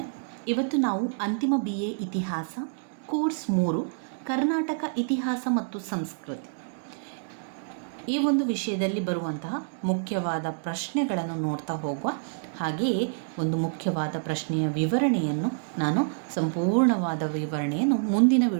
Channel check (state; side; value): silent; left; 60 dB below the other